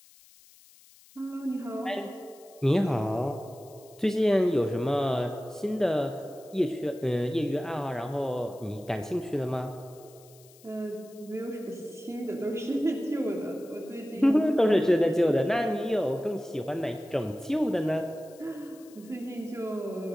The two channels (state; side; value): noise; left; hiss, 25 dB below the sound